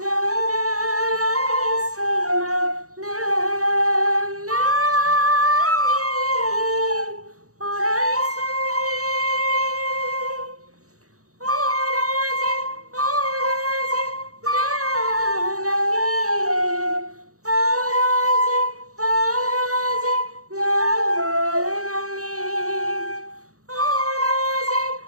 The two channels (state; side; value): late; left; 0.65 ms